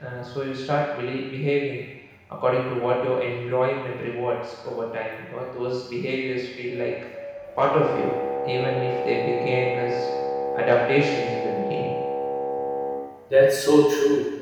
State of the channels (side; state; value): both; identical; correlation 1.00